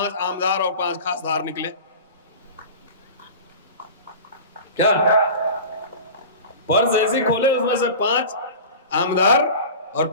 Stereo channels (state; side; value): inverted; both; correlation -0.35